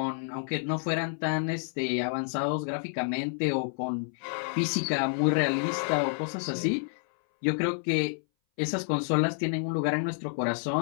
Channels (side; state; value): right; silent; 58 dB below the other